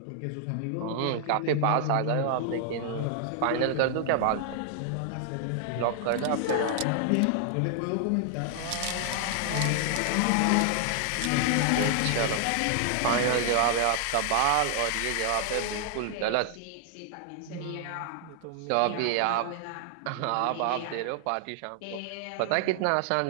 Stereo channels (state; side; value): different; both; correlation 0.00